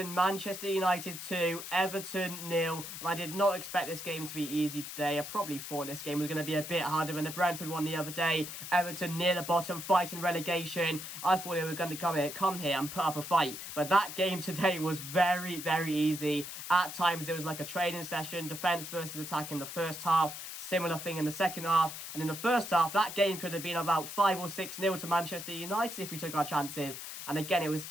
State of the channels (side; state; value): left; noise; hiss, 9 dB below the sound